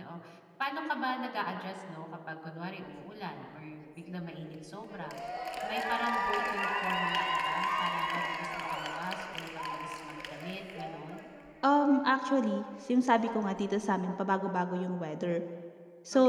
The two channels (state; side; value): identical; both; correlation 1.00